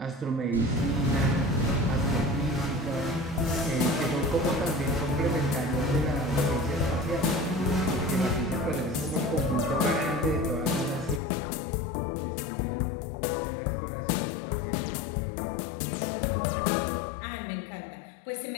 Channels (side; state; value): right; drops out; at 11.2 s